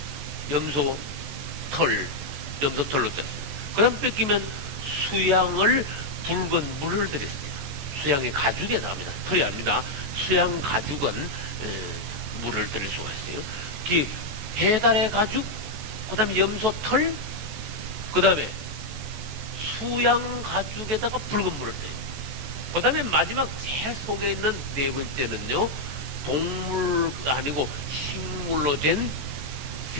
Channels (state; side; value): late; left; 14 ms